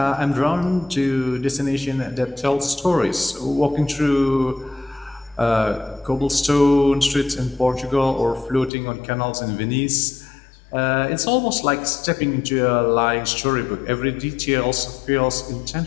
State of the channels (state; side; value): drops out; right; at 8.7 s